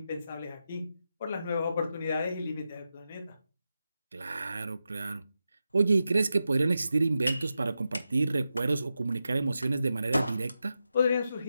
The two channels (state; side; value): inverted; both; correlation -0.89